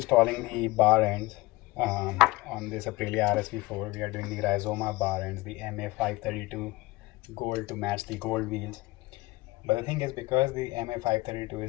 the bar ends on this Aprilia RSV4. We are doing the Rizoma bar ends, the MA532 gold to match the gold wheels. But the thing is, because the MA532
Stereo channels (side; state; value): right; quieter; 21.2 dB